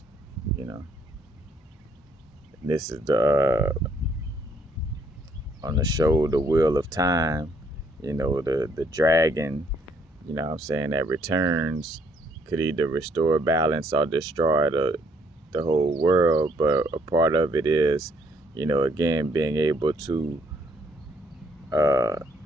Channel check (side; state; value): both; normal; correlation 0.67